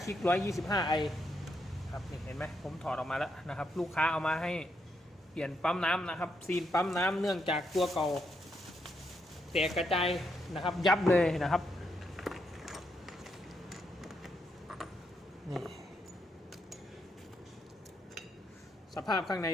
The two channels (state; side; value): normal; both; correlation 0.79